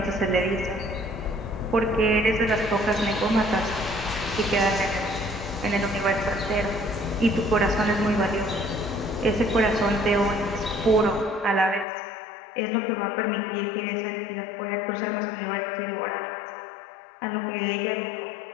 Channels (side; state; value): right; drops out; at 11.9 s